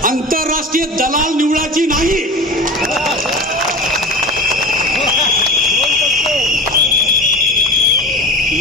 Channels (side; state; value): both; normal; correlation 0.32